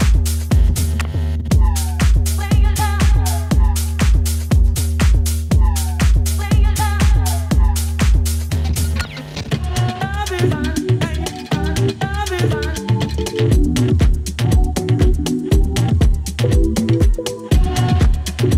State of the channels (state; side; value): identical; both; correlation 1.00